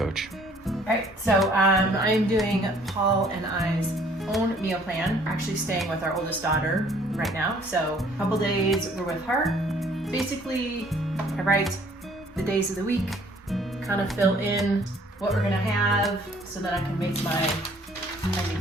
All right, so I'm doing Paul and I's own meal plan. We're actually staying with our oldest daughter right now, so a couple days we're with her. Basically, I write the days of the week, kind of fill in what we're gonna have so that I can make my handy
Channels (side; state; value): both; normal; correlation 0.58